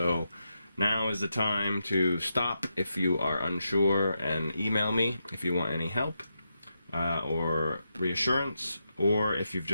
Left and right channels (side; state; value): both; inverted; correlation -0.85